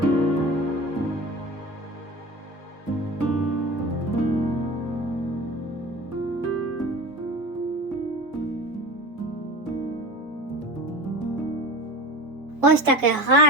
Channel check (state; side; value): normal; both; correlation 0.33